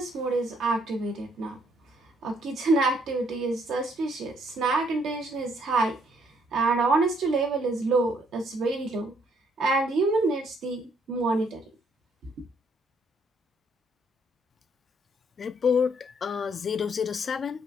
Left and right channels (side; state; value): both; normal; correlation 0.67